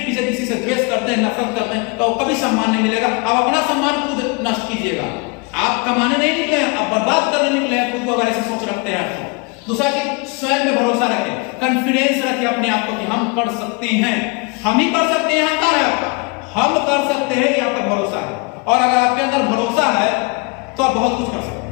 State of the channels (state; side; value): quieter; right; 30.0 dB